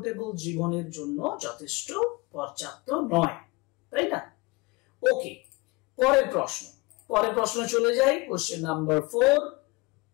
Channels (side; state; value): right; quieter; 24.8 dB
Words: জীবনের জন্য যথেষ্ট পর্যাপ্ত নয়, তাই না? ওকে, পরের প্রশ্ন চলে যাই। Question number 4,